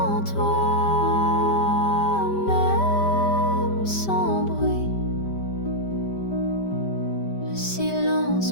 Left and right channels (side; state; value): right; late; 5.1 ms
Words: toi, même sans bruit, le silence